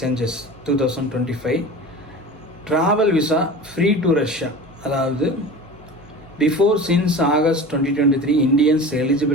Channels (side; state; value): both; normal; correlation 0.34